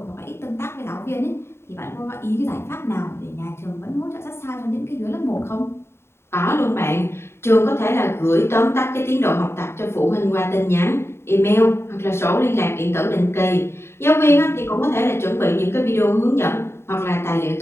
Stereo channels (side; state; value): right; late; 0.12 ms